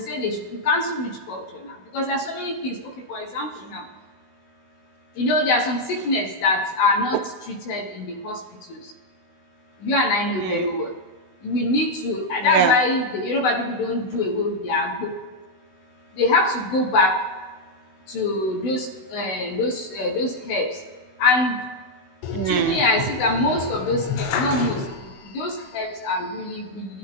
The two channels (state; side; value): late; right; 16 ms